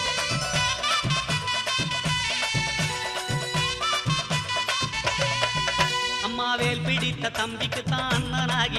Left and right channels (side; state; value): both; identical; correlation 1.00